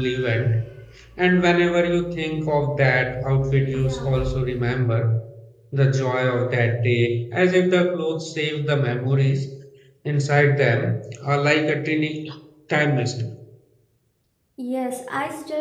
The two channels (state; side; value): identical; both; correlation 1.00